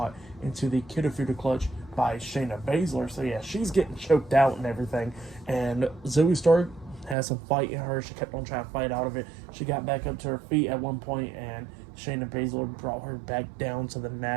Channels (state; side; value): drops out; left; at 7.2 s